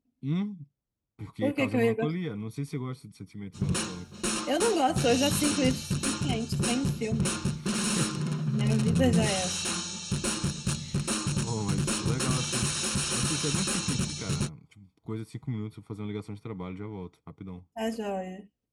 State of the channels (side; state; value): both; identical; correlation 1.00